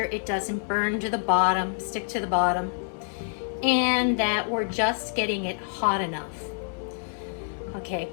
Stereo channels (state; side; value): silent; right; 56 dB below the other